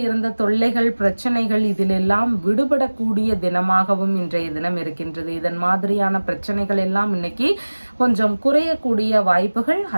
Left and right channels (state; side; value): inverted; both; correlation -1.00